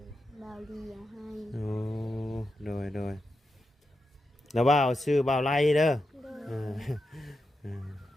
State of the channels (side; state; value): both; normal; correlation 0.88